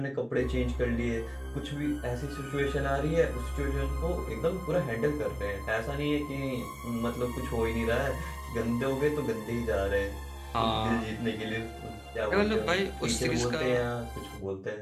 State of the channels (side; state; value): both; identical; correlation 1.00